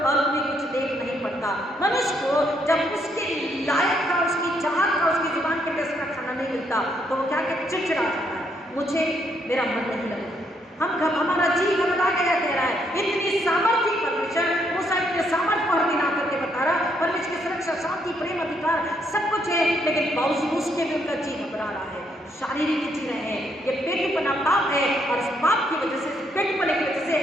और भी कुछ देख नहीं पड़ता। था। मनुष्य को जब उसके लायक का, उसकी चाहत का, उसकी जुबान के टेस्ट का खाना नहीं मिलता तो वो क्या कहता है, चिड़चिड़ा जाता है, मुझे मेरा मन नहीं लगता, हमारा जी घबरा गया, कह रहा है। इतनी सामर्थ्य परमेश्वर, मूसा इतने सामर्थ्य को हर दिन आकर के बता रहा, परमेश्वर की सुरक्षा, शांति, प्रेम, अधिकार सब कुछ है, लेकिन बावजूद उसके भी उनका जी घबरा रहा है, शारीरिक जी रहे हैं। ये पेटूपना पाप है और इस पाप की वजह से, पेटूपने की वजह से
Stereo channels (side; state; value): both; normal; correlation 0.73